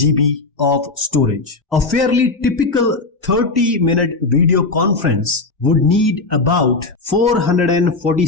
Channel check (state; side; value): quieter; right; 3.6 dB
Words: of storage. A fairly typical 30-minute video conference would need about